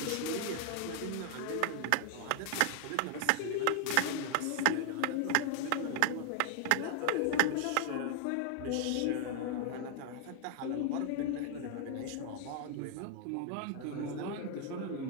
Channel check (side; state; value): both; different; correlation 0.00